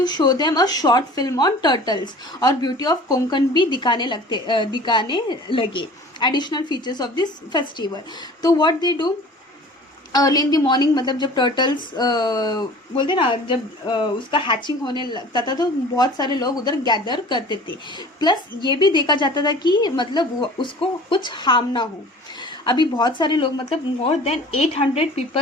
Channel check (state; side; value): normal; both; correlation 0.44